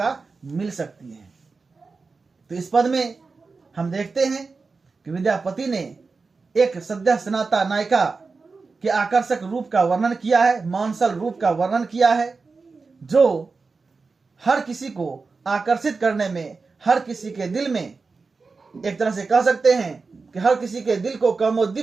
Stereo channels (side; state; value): left; quieter; 4.3 dB